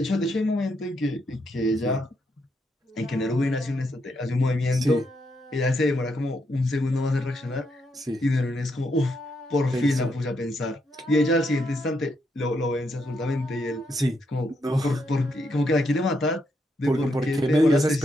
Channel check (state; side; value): normal; both; correlation 0.79